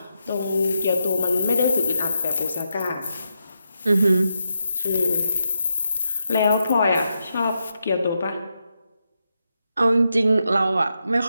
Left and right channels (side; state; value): both; inverted; correlation -0.85